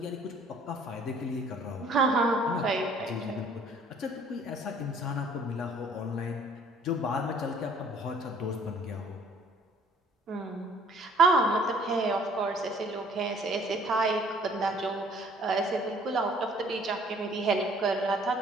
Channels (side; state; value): both; normal; correlation 0.56